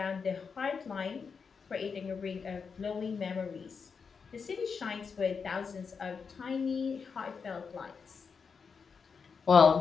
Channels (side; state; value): right; quieter; 5.7 dB